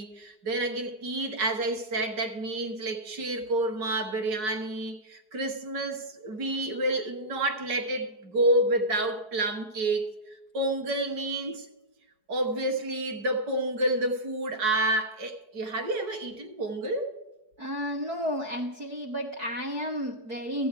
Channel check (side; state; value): left; late; 4.7 ms